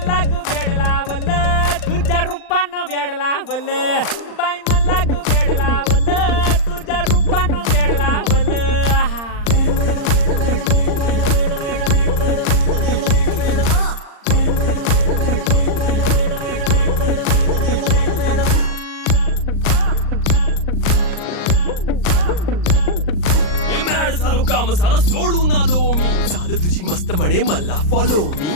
ग व्याड लावलं तुझ्या रूपानं व्याड लावलं बाई मला ग व्याड लावलं तुझ्या रूपानं व्याड लावलं आहा झालो काम सारं सोडून आलो मी चाल तुझी मस्त म्हणे मला फॉलो मी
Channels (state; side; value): late; right; 39 ms